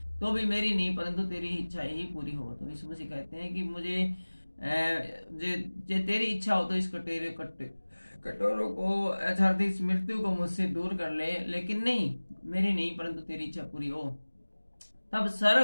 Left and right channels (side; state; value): both; inverted; correlation -1.00